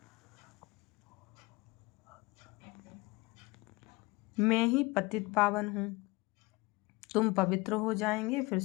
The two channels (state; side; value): quieter; right; 22.9 dB